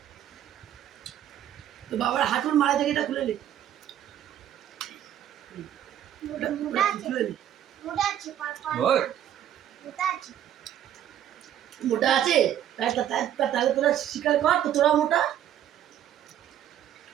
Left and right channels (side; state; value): left; quieter; 10.9 dB